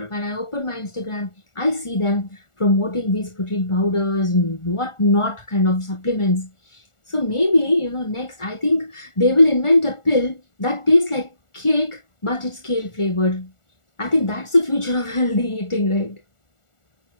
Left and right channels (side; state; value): right; late; 1.4 ms